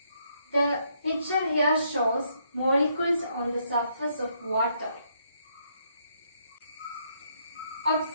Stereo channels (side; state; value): both; inverted; correlation -0.73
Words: The picture here shows molecules on the surface of water.